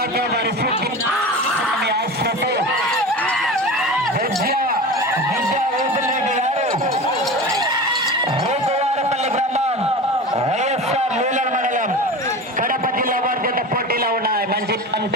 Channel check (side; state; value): both; normal; correlation 0.30